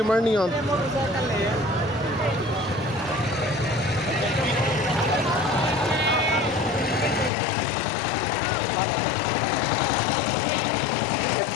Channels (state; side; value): drops out; right; at 7.3 s